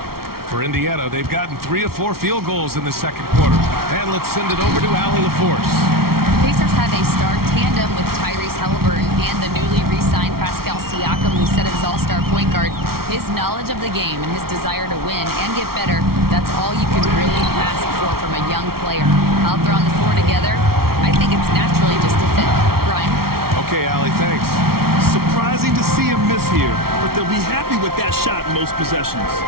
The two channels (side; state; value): left; late; 0.94 ms